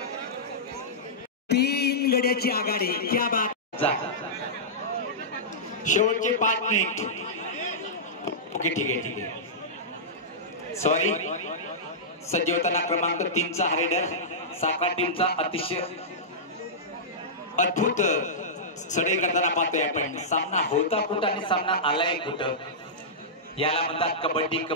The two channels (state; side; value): normal; both; correlation -0.14